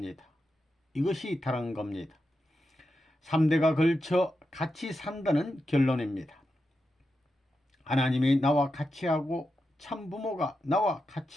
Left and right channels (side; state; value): both; normal; correlation 0.88